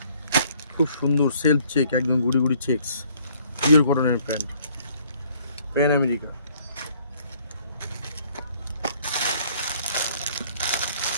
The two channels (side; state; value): both; inverted; correlation -0.62